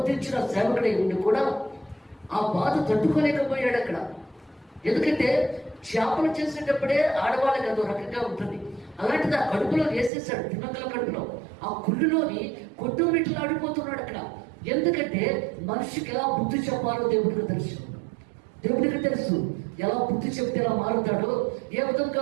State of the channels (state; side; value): drops out; left; at 10.1 s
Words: సేవకుడై ఉండి కూడా ఆ బాధ తట్టుకోలేకపోయాడు అక్కడ. ఎందుకంటే చేపలు చేసేటప్పుడే ఆడవాళ్ళకి అదో రకంగా ఉంటుంది. అలాంటిది ఆ కడుపులో వేసేసాడు, తిమ్మంతుల కడుపులో. ఆ కుళ్ళులోని కొట్టుమిట్లు ఆడిపోతున్నాడు అక్కడ. ఎందుకంటే మనిషికి ఎలా బుద్ధి చెప్పాలో దేవుడికి తెలుసు. దేవుడికి తెలుసు ఎలా బుద్ధి చెప్తే ఎలా మారుతాడో, ఏ విధంగా